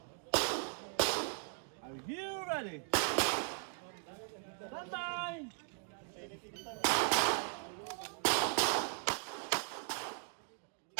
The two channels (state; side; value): silent; left; 52 dB below the other